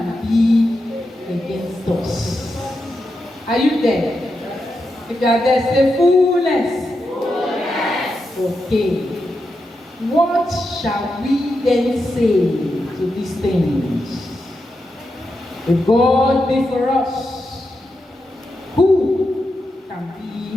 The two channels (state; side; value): normal; both; correlation 0.87